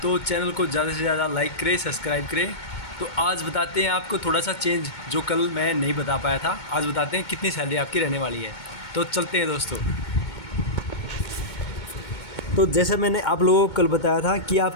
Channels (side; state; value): right; late; 2.2 ms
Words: तो चैनल को ज़्यादा से ज़्यादा लाइक करें, सब्सक्राइब करें। तो आज बताते हैं आपको थोड़ा सा चेंज जो कल मैं नहीं बता पाया था। आज बताते हैं कितनी सैलरी आपकी रहने वाली है। तो चलते हैं दोस्तों। तो जैसे मैंने आप लोगों को कल बताया था कि